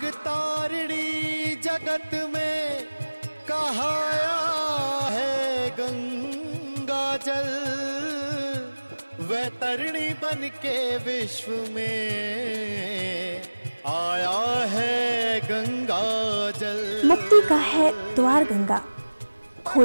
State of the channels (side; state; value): both; inverted; correlation -1.00